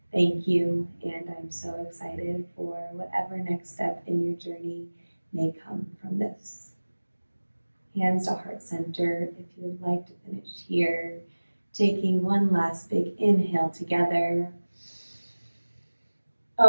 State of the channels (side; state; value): both; inverted; correlation -1.00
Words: Thank you, and I'm so excited for whatever next step in your journey may come from this. Hands to heart center if you would like to finish here. Taking one last big inhale together.